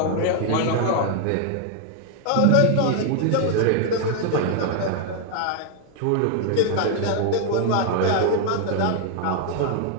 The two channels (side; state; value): both; different; correlation 0.00